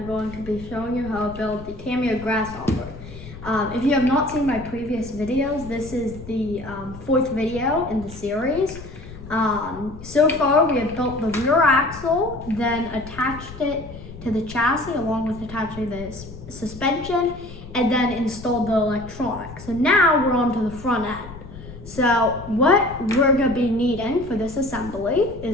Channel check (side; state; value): left; noise; rumble, 15 dB below the sound